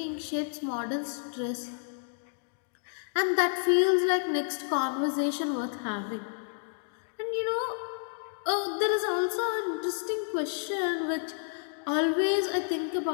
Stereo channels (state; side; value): silent; right; digital silence